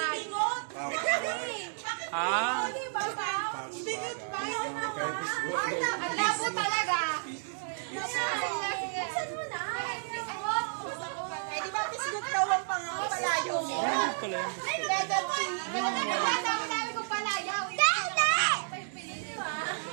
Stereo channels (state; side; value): silent; left; digital silence